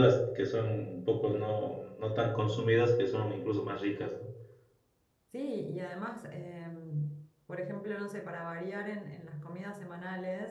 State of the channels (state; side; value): identical; both; correlation 1.00